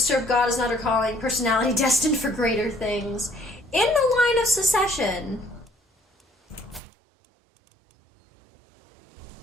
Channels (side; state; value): left; drops out; at 6.8 s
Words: God is not her calling. Personality destined for greater things. In the line of succession.